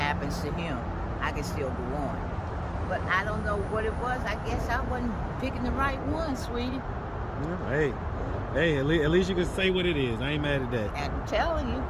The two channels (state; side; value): identical; both; correlation 1.00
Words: to him, I can still go on. But I don't know what it was. I guess I wasn't picking the right one, sweetie. Yeah, hey, at least you can say what it is. I ain't mad at that. I'm telling you.